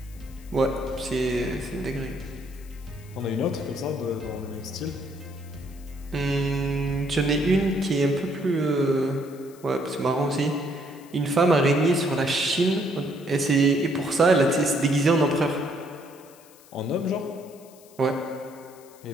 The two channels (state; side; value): noise; left; hiss, 25 dB below the sound